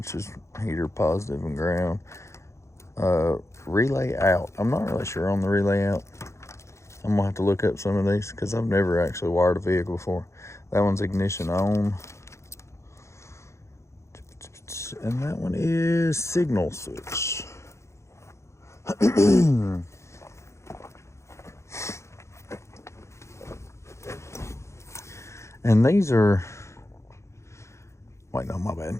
is heater positive and ground. Relay out. I'm not really sure on the relay out. I'm gonna have to look up some of these because I've never actually wired a vehicle before. That one's ignition on. And that one is signal switch. And these are, wait, no, my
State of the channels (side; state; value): right; late; 0.14 ms